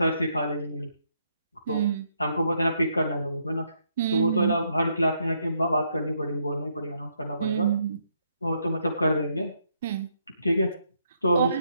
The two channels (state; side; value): inverted; both; correlation -0.75